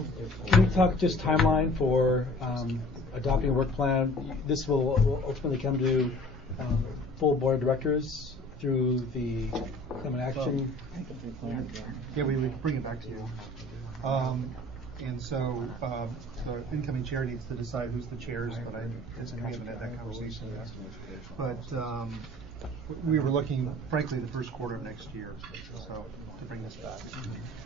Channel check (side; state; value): both; normal; correlation 0.48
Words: can we talk just timeline for adopting a work plan? This will ultimately come to full board of directors through the climate action. Yeah, we would bring it back to you. And so the incoming chair needs to decide who's the chairs, but we haven't had that conversation yet. But we were looking, frankly, the first quarter of next year, so to bring this back.